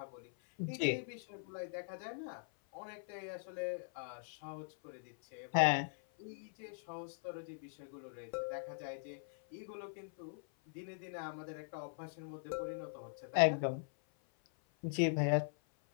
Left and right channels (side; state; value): right; silent; 50 dB below the other